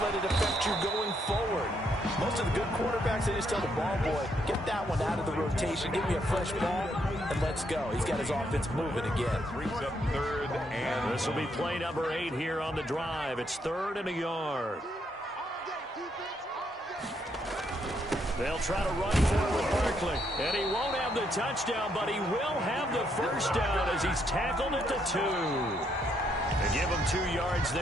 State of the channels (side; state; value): both; normal; correlation 0.74